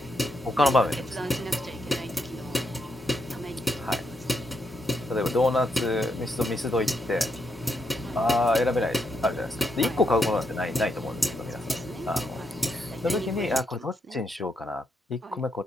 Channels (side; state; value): both; normal; correlation 0.79